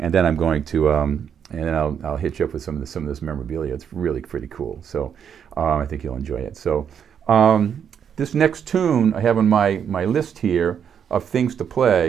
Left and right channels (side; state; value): left; quieter; 8.0 dB